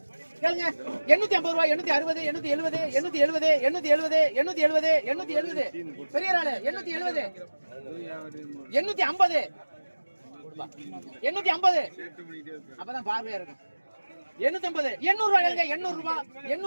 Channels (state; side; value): inverted; both; correlation -1.00